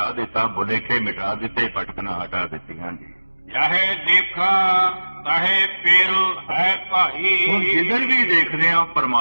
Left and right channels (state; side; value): inverted; both; correlation -1.00